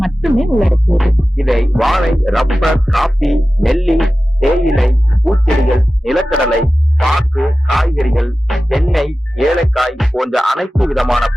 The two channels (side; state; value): both; normal; correlation 0.95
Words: மட்டுமே உள்ளடக்கியது. இதை வாழை, ரப்பர், காபி, நெல்லி, தேயிலை, பூச்செடிகள், நிலக்கடலை, பாக்கு, காய்கறிகள், தென்னை, ஏலக்காய் போன்ற அனைத்து விதமான